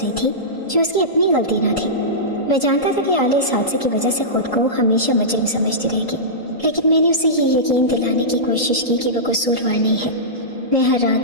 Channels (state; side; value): normal; both; correlation -0.16